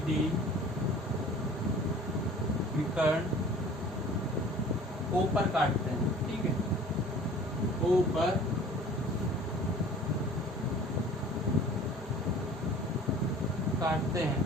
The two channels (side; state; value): both; normal; correlation 0.47